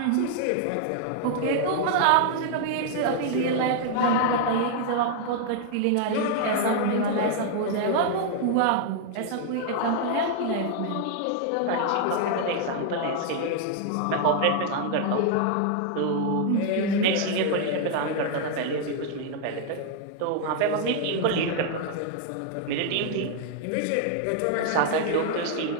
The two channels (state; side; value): different; both; correlation 0.00